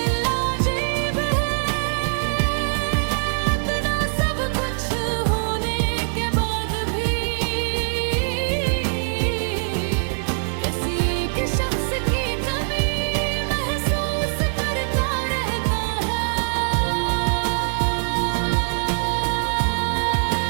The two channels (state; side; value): silent; left; digital silence